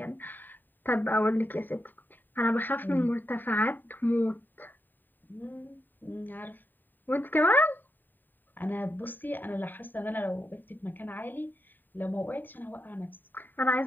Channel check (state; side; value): late; right; 0.091 ms